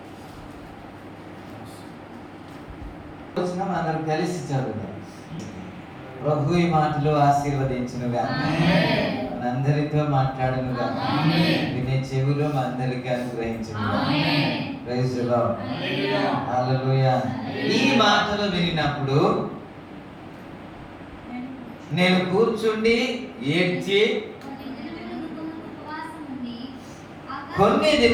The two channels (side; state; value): both; identical; correlation 1.00